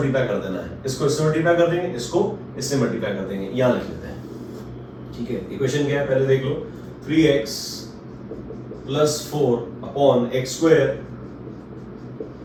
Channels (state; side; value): identical; both; correlation 1.00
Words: कर देना है। इसको इससे मल्टीप्लाई कर देंगे, इसको इससे मल्टीप्लाई कर देंगे। यहां लिख लेते हैं। ठीक है, इक्वेशन क्या है पहले देख लो। 3x + 4/x²